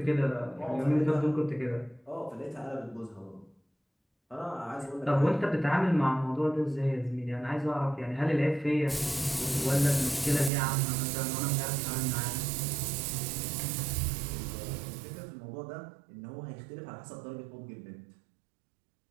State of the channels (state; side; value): drops out; left; at 10.5 s